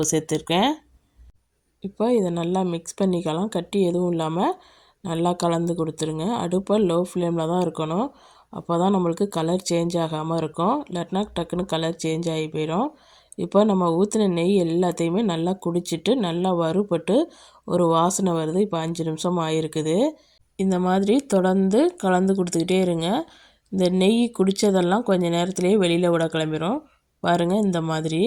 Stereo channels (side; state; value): both; identical; correlation 1.00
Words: சேர்த்துருக்கேன். இப்போ இதை நல்லா மிக்ஸ் பண்ணிக்கலாம். கட்டி எதுவும் இல்லாமல் நல்லா கலந்து கொடுத்துருங்க. அடுப்பை லோ ஃப்ளேமில் தான் இருக்கணும். அப்போ தான் நம்மளுக்கு கலர் சேஞ்ச் ஆகாமல் இருக்கும். இல்லாட்டினா டக்குன்னு கலர் சேஞ்ச் ஆகி போயிடும். இப்போ நம்ம ஊற்றின நெய் எல்லாத்தையுமே நல்லா குடிச்சிட்டு நல்லா வறுபட்டு ஒரு வாசனை வருது. இப்போ 5 நிமிஷம் ஆகிருக்குது. இந்த மாதிரி தொடர்ந்து கலந்து கொடுத்துக்கிட்டே இருங்க. இந்த நெய் குடித்ததெல்லாம் கொஞ்சம் நேரத்துலேயே வெளியில் விட கிளம்பிடும். பாருங்கள், இந்த மாதிரி